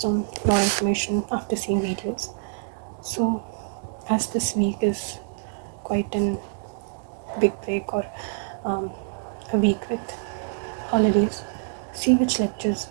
on more information after seeing videos. So as this week is quite an big break or a week with holidays, see which lectures,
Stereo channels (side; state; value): left; silent; digital silence